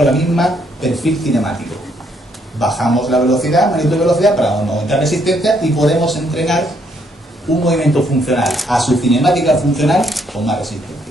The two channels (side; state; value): both; normal; correlation 0.71